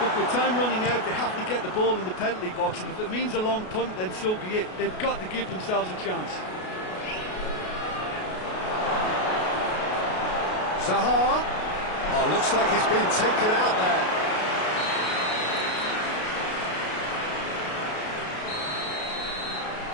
Look, with time running out, they have to get the ball in the penalty box, and if it means a long punt, then so be it. They've got to give themselves a chance. Zaha. Oh, looks like he's been taken out there.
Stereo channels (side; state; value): right; late; 33 ms